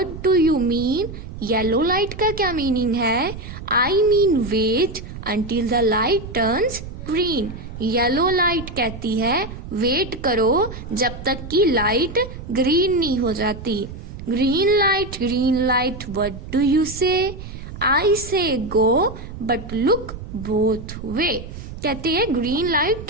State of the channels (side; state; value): right; noise; rumble, 11 dB below the sound